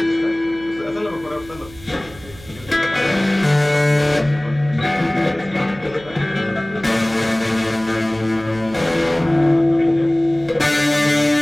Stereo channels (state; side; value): noise; right; hum, 20 dB below the sound